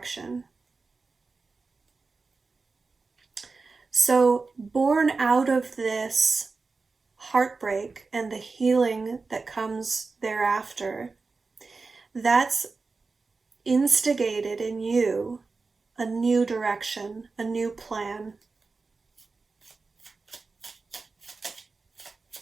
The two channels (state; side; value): quieter; left; 4.1 dB